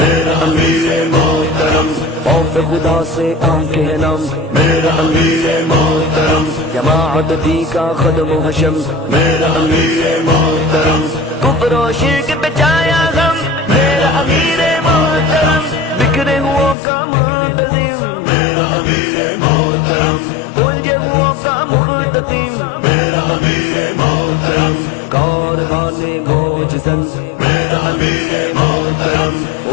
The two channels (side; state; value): right; drops out; at 16.8 s